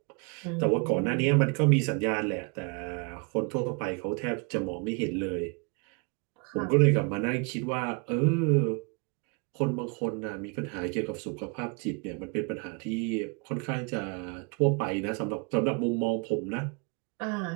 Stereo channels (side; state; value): left; quieter; 33.4 dB